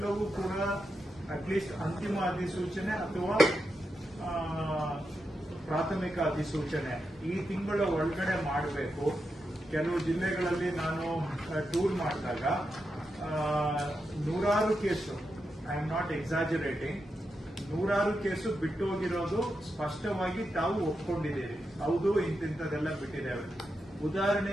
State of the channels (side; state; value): both; normal; correlation 0.87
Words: ಕೂಡ ಅಟ್ಲೀಸ್ಟ್ ಅಂತಿಮ ಅಧಿಸೂಚನೆ ಅಥವಾ ಪ್ರಾಥಮಿಕ ಅಧಿಸೂಚನೆ ಈ ತಿಂಗಳ ಒಳಗಡೆ ಮಾಡಬೇಕು. ಕೆಲವು ಜಿಲ್ಲೆಗಳಲ್ಲಿ ನಾನು ಟೂರ್ ಮಾಡಿದಾಗ ನೂರಾರು ಕೇಸು, ಐ ಆಮ್ ನಾಟ್ ಎಕ್ಸಾಜರೇಟಿಂಗ್, ನೂರಾರು ಕೇಸು ಬಿಟ್ಟು ಹೋಗಿರೋದು ಸ್ಪಷ್ಟವಾಗಿ ತಾವು ಒಪ್ಕೊಂಡಿದ್ದೀರಿ. ಹೌದು, ಇಂತಿಂತದೆಲ್ಲ ಬಿಟ್ಟಿದ್ದೇವೆ.